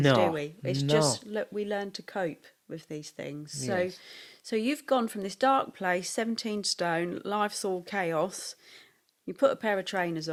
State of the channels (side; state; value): both; identical; correlation 1.00